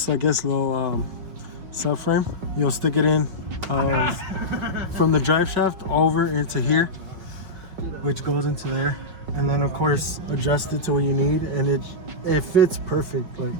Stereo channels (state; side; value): late; left; 5.3 ms